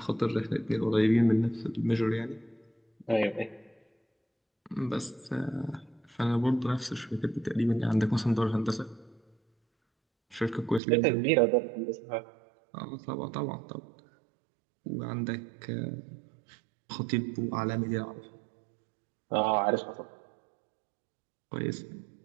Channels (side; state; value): left; drops out; at 10.8 s